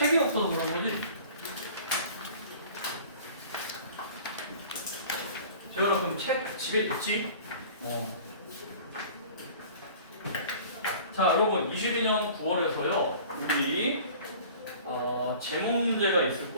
없어서 그런 거지? 제가 그럼 책 집에 있지? 자, 여러분 22년 9월에서요 우리 제목 문제가 있을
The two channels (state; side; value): inverted; both; correlation -0.45